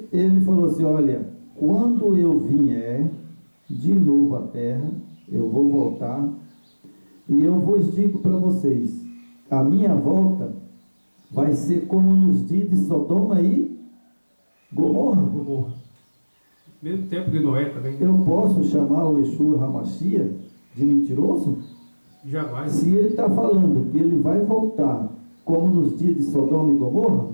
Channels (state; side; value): inverted; both; correlation -1.00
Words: falou assim, olha, quando eu vier de novo à terra, eu vou voltar, e eu vos digo para vocês, a minha volta vai ser como nos dias de Sodoma e Gomorra. Mesmo tempo de Noé também. Eu posso chamar o Yeshua HaMashiach de mentiroso? Jamais. Se ele está falando que ele vai voltar como nos dias de Sodoma e Gomorra,